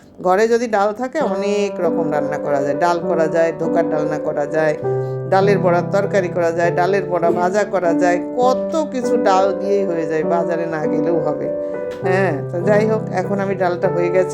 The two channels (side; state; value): both; identical; correlation 1.00